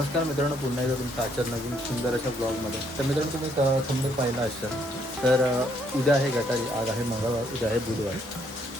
मित्रांनो, पुन्हा एकदा तुमचं आजच्या नवीन सुंदर अशा ब्लॉगमध्ये. तर मित्रांनो, तुम्ही थंबनेल पाहिला असाल तर उद्या आहे गटारी, आज आहे मंगळवार, उद्या आहे बुधवार.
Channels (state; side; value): normal; both; correlation 0.69